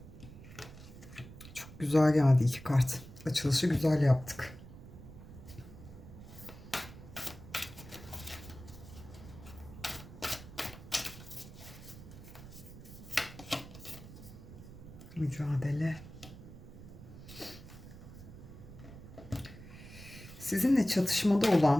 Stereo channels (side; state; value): right; noise; rumble, 15 dB below the sound